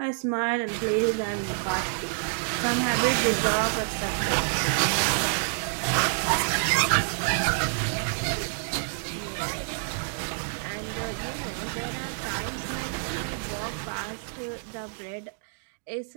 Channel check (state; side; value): silent; left; digital silence